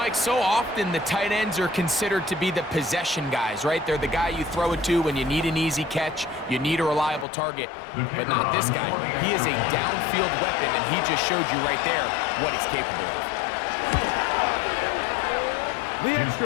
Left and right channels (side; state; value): right; drops out; at 7.2 s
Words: so often the tight ends are considered to be the possession guys, right? They're the guy you throw it to when you need an easy catch, you need a reliable target, but not this guy. He is a downfield weapon, and he just showed you right there what he's capable of. The